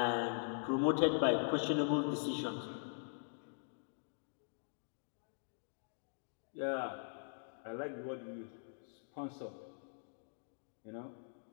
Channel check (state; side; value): silent; right; digital silence